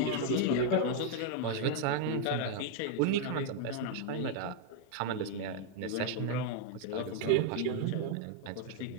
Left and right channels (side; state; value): both; different; correlation 0.00